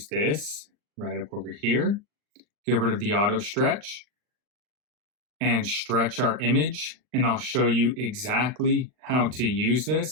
this right up over here, get rid of the auto stretch, and stretch our image. And I'll show you exactly how to use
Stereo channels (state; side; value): late; left; 39 ms